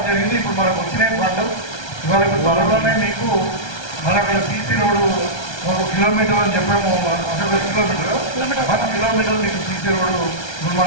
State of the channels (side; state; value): right; late; 1.3 ms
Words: జరిగింది. ఇప్పుడు మనకు వచ్చిన ఫండ్ ఇవాళ ఇప్పుడు త్వరలోనే మీకు మన అక్కడ పీసీ రోడ్డు 1 కిలోమీటర్ అని చెప్పాము. అసలు 1 కిలోమీటర్ మీకు సీసీ రోడ్డు ఇప్పుడు